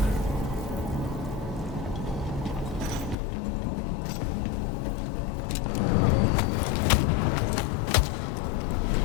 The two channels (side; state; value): right; drops out; at 3.2 s